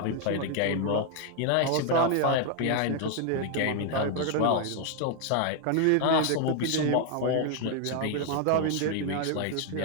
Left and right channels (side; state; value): both; different; correlation 0.00